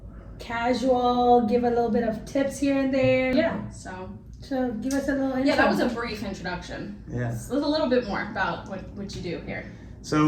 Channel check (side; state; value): both; identical; correlation 1.00